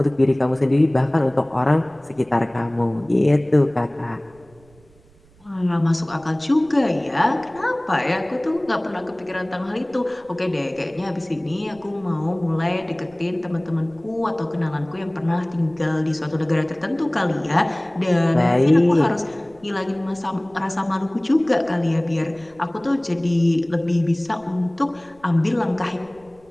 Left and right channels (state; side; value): noise; right; rumble, 29 dB below the sound